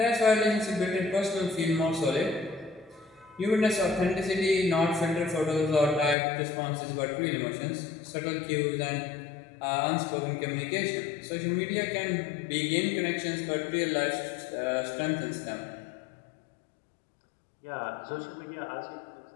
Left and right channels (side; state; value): right; drops out; at 6.2 s